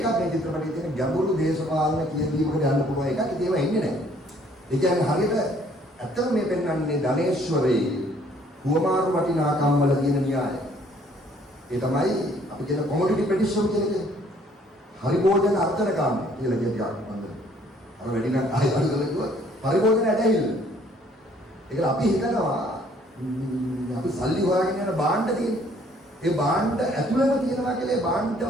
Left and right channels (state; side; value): normal; both; correlation 0.61